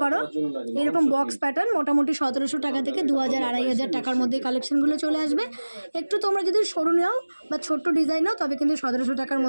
পারো, এরকম বক্স প্যাটার্ন মোটামুটি 1700 টাকা থেকে 2000-2500 টাকার মধ্যে কালেকশনগুলো চলে আসবে। একটু তোমরা যদি সরু নাও বা ছোট্ট ডিজাইন নাও তবে কিন্তু 1700 টাকার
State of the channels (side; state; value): both; inverted; correlation -1.00